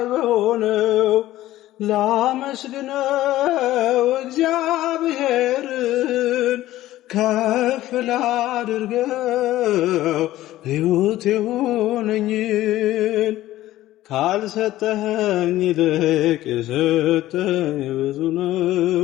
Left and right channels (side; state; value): right; quieter; 15.1 dB